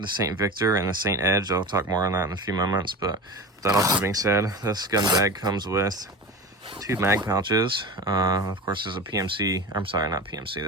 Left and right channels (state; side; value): normal; both; correlation 0.29